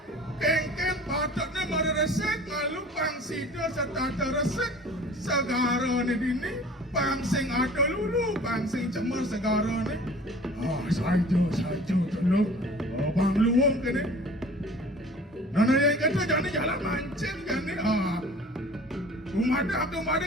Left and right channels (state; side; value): normal; both; correlation 0.46